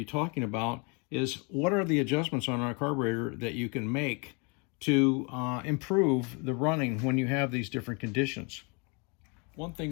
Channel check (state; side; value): quieter; right; 32.8 dB